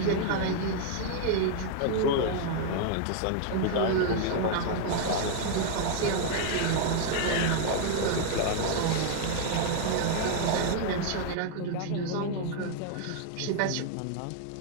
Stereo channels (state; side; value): different; both; correlation 0.00